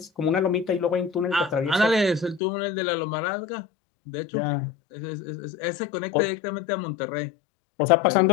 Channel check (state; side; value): drops out; right; at 2.4 s